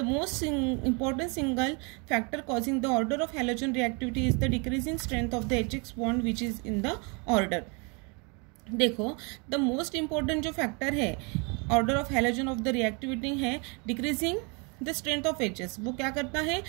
most important single factor causing the order of halogen reactivity is the decreasing strength of the HX bond which is in the order. देखो, the most important जो factor है order of halogen of the reactivity है decreasing the strength of HS. वो क्या करता है,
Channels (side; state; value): left; quieter; 32.5 dB